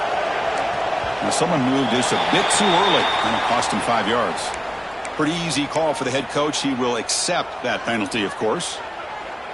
Now someone moved this a bit too early, and it cost him 5 yards. Pretty easy call for the head coach. He will accept that penalty, of course.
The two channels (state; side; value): identical; both; correlation 1.00